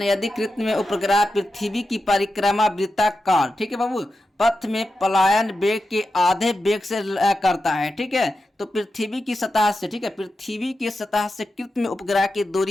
यदि कृत्य में उपग्रह पृथ्वी की परिक्रमा वृत्ताकार, ठीक है बाबू, पथ में पलायन वेग के आधे वेग से करता है, ठीक है, तो पृथ्वी की सतह से, ठीक है, पृथ्वी की सतह से कृत्य में उपग्रह की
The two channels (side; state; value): both; normal; correlation 0.90